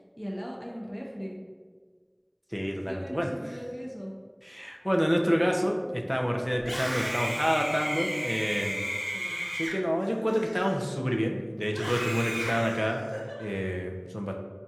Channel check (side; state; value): both; identical; correlation 1.00